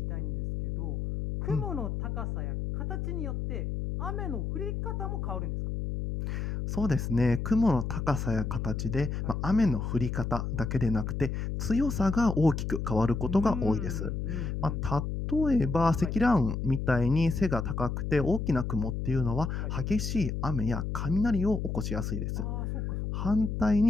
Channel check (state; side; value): noise; left; hum, 3 dB below the sound